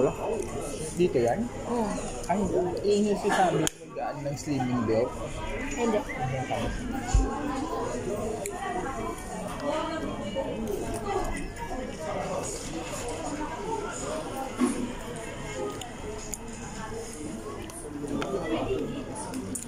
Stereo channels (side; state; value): both; identical; correlation 1.00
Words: Dito yan? Hmm. Ay, yun yung si Sammy mag-aan ng slimming belt. Hindi. Yung kami.